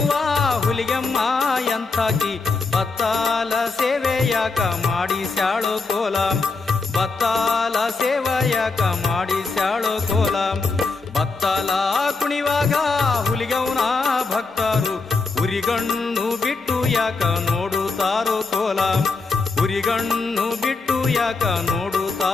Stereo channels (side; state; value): right; quieter; 4.1 dB